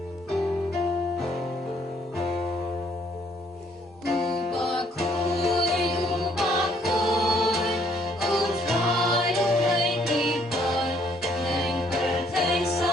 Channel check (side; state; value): both; normal; correlation 0.66